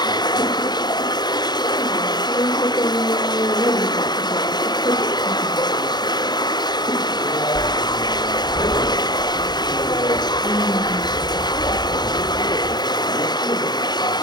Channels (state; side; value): late; right; 0.20 ms